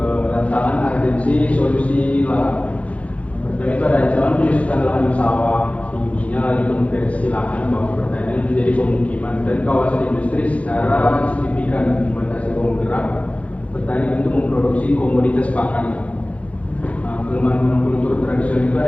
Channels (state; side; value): late; right; 0.065 ms